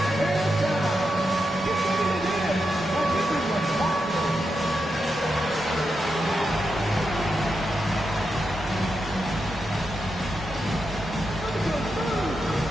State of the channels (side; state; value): both; normal; correlation 0.86